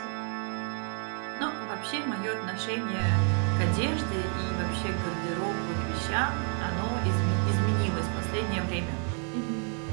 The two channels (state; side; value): quieter; left; 39.5 dB